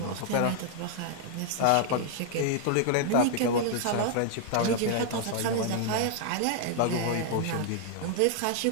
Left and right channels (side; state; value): both; different; correlation -0.01